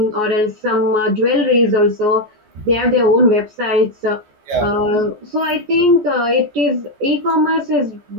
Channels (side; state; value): left; late; 14 ms